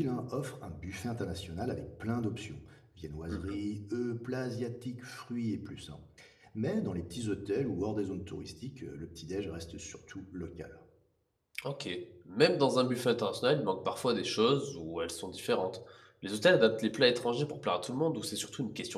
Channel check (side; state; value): both; identical; correlation 1.00